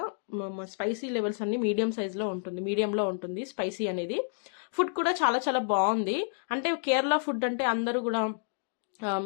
స్పైసీ లెవెల్స్ అన్ని మీడియం సైజ్ లో ఉంటుంది, మీడియంలో ఉంటుంది స్పైసీ అనేది. ఫుడ్ కూడా చాలా చాలా బాగుంది. అంటే కేరళ ఫుడ్ అంటే అందరూ కూడా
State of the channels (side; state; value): right; silent; digital silence